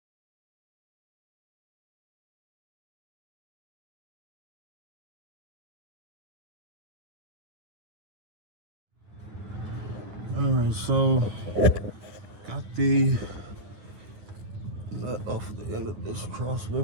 Alright, so got the nut off the end of this cross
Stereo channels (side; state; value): left; late; 9.7 ms